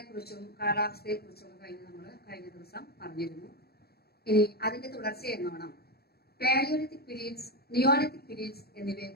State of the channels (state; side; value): late; right; 0.46 ms